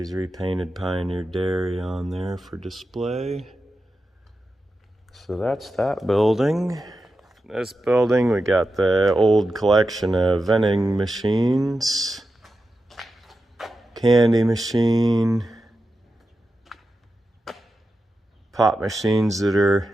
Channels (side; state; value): both; normal; correlation 0.91